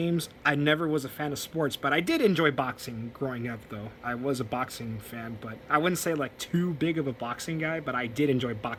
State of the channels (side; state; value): both; identical; correlation 1.00